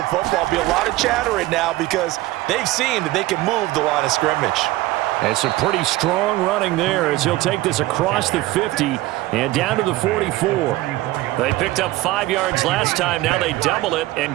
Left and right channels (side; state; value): left; quieter; 17.9 dB